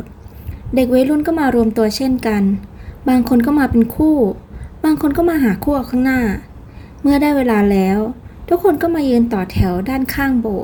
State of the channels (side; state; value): both; identical; correlation 1.00